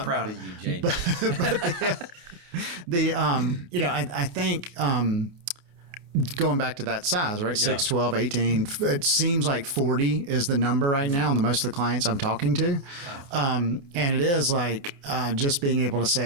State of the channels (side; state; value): left; late; 29 ms